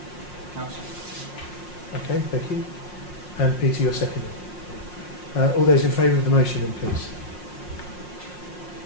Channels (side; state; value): right; late; 5.6 ms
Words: council. Okay, thank you. And Peter, you're seconding. All those in favour of the motion then, please.